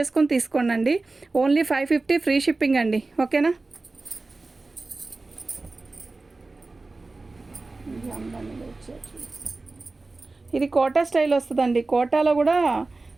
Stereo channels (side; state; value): left; quieter; 3.4 dB